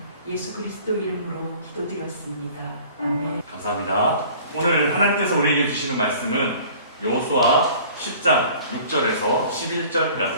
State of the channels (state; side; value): inverted; both; correlation -0.48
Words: 예수 그리스도 이름으로 기도드렸습니다. 아멘. 감사합니다. 오늘 하나님께서 우리에게 주시는 말씀은 여호수아 10장 6절에서